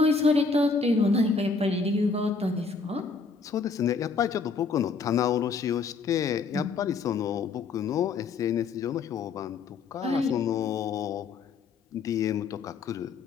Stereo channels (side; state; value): right; quieter; 4.8 dB